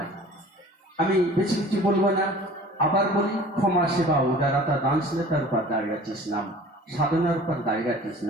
আমি বেশি কিছু বলবো না, আবার বলি, ক্ষমা, সেবা, উদারতা, দানশীলতার উপর দাঁড়িয়ে আছে ইসলাম। সাধনার উপর দাঁড়িয়ে আছে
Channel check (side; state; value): both; normal; correlation 0.45